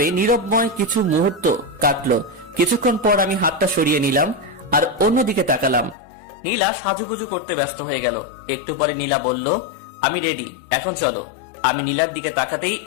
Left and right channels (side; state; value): right; drops out; at 6.0 s